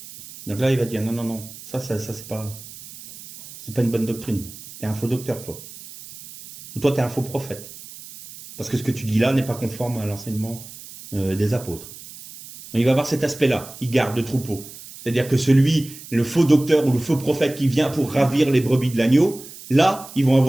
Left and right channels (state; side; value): noise; right; hiss, 16 dB below the sound